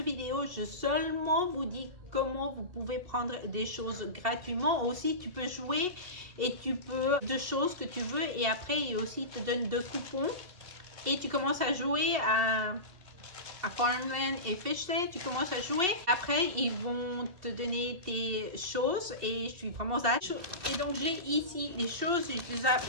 vidéo. Je seulement vous dis comment vous pouvez prendre des choses gratuitement. Aussi, tu peux jouer et tu peux deux choses que tu veux et après, ils aussi te donnent deux coupons et tu commences à jouer à Farmland et Fishland, tu commences à jouer. Après, ils vont te donner tes choses et je suis vraiment hâte. Et donc, j'ai ici les choses. Je les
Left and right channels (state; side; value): late; left; 2.7 ms